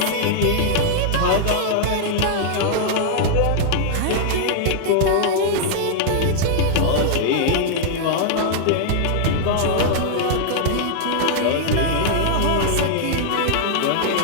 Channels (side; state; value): both; different; correlation -0.01